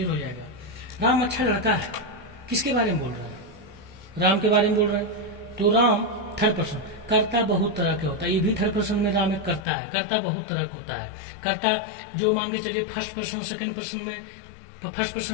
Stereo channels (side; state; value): right; drops out; at 9.7 s